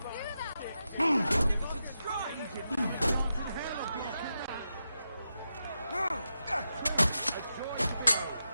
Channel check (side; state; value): both; inverted; correlation -0.88